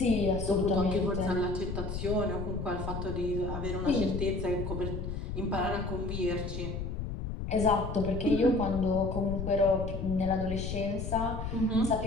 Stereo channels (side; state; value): left; noise; rumble, 5 dB below the sound